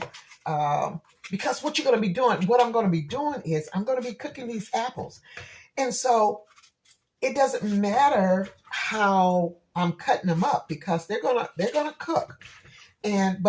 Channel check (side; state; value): both; identical; correlation 1.00